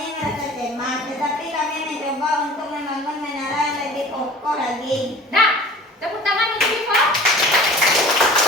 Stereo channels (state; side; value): normal; both; correlation 0.43